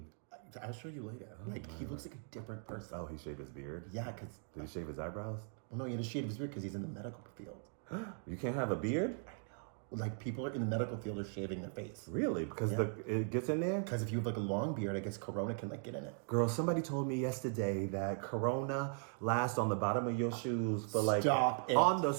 I'll show you later. He looks like a different person. Oh, he shaved his beard? Yeah, because... Did he shave his eyebrows? Well, no, he had to shave his beard because he's in the medical field. You can't have a beard? I know. Like, people in the medical field are shaving their face. Really? Because it gets in there? Because if you have like a long beard, I guess Corona can like get in it. Girl, somebody told me yesterday that Corona lasts on the bottom of your shoes for like... Stop it. On the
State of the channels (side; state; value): left; silent; 52 dB below the other